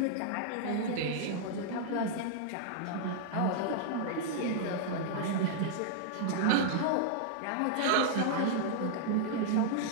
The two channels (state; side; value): different; both; correlation -0.01